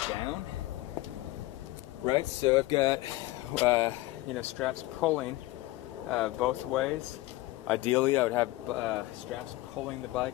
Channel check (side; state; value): right; quieter; 18.5 dB